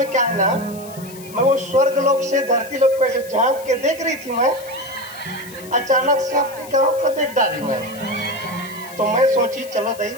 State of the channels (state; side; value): noise; left; hiss, 18 dB below the sound